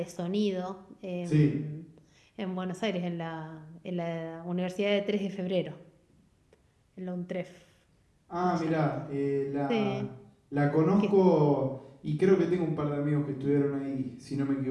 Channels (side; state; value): both; identical; correlation 1.00